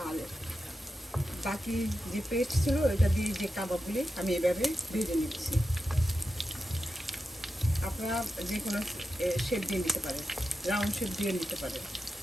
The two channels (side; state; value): both; normal; correlation 0.90